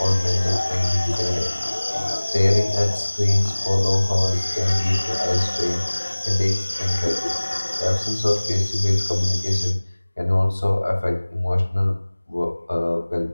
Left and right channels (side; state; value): both; inverted; correlation -1.00